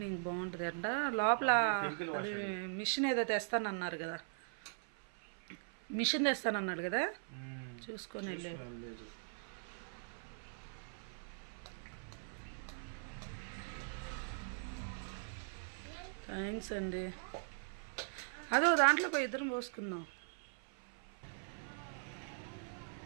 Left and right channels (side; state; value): left; silent; 51 dB below the other